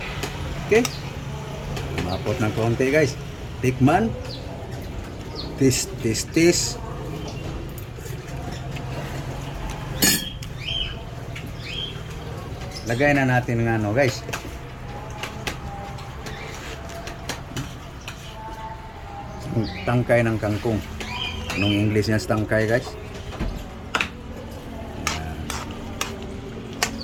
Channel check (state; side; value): identical; both; correlation 1.00